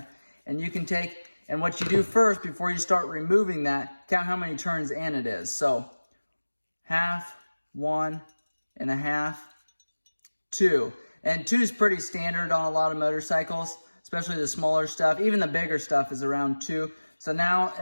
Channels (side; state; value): both; inverted; correlation -1.00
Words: And you can take, and what you do first before you start removing that, count how many turns in it is. So, half, 1.5, 2. And 2 is pretty standard on a lot of motorcycles, especially the smaller stuff. Even the bigger stuff is around 2. So now,